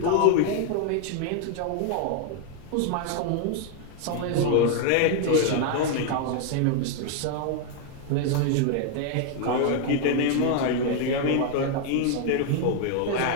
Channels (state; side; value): different; both; correlation 0.00